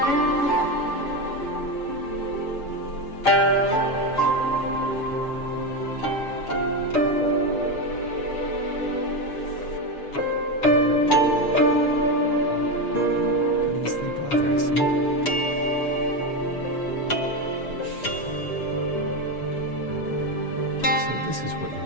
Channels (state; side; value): late; right; 7.1 ms